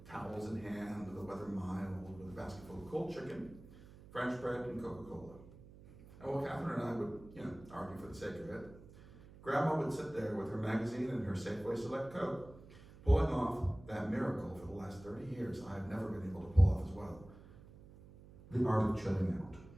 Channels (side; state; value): right; noise; hum, 19 dB below the sound